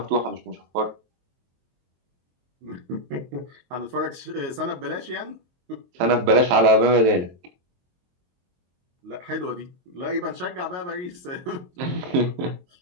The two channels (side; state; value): left; late; 23 ms